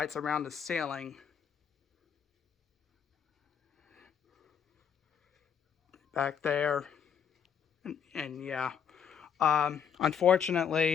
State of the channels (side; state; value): right; quieter; 7.8 dB